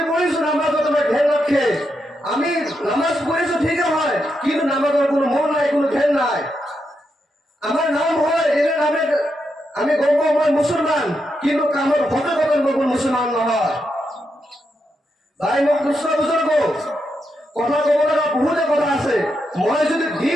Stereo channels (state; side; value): normal; both; correlation 0.83